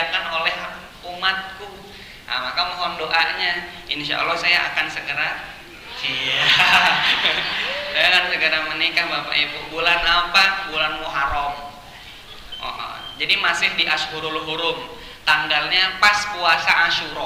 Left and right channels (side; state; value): both; identical; correlation 1.00